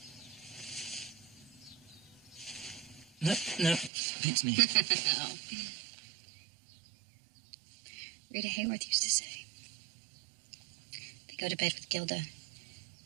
No, beats me. Oh. Rita Hayworth used to say, they go to bed with Gilda.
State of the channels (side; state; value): left; drops out; at 3.9 s